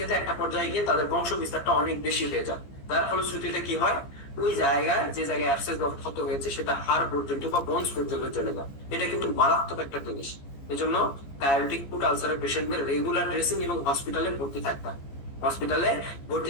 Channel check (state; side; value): late; right; 14 ms